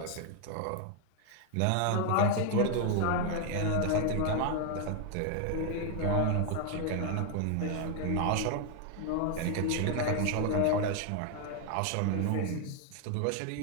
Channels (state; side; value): different; both; correlation 0.00